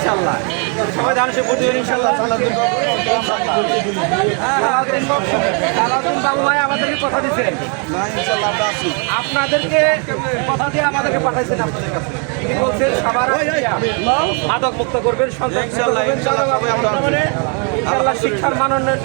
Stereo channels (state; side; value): quieter; left; 38.3 dB